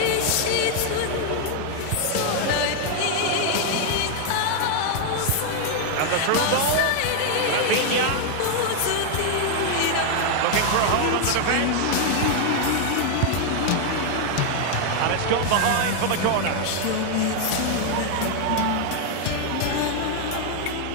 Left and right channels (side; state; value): both; different; correlation 0.00